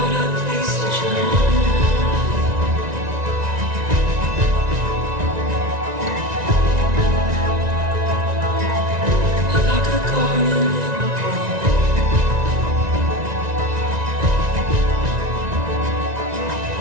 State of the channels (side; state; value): left; late; 1.9 ms